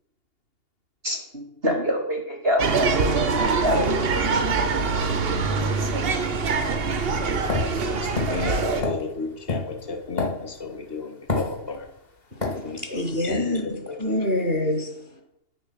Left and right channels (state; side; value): late; left; 2.8 ms